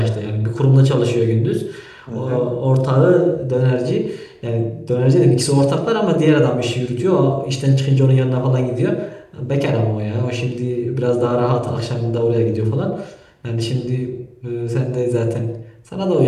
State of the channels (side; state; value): both; identical; correlation 1.00